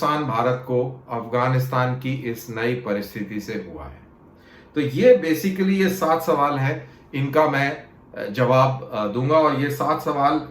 भारत को अफगानिस्तान की इस नई परिस्थिति से हुआ है। तो ये बेसिकली ये 7 सवाल हैं, इनका मैं जवाब दूंगा। और ये 7 सवाल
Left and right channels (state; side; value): identical; both; correlation 1.00